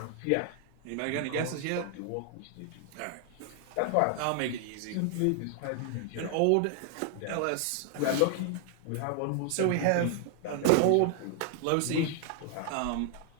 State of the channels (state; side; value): different; both; correlation 0.00